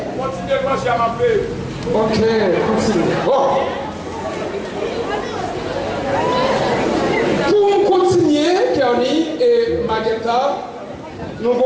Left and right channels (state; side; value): identical; both; correlation 1.00